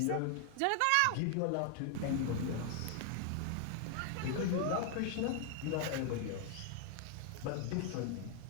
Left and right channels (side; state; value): both; different; correlation 0.00